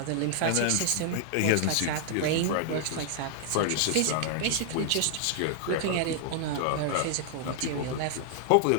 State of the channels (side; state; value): both; different; correlation 0.00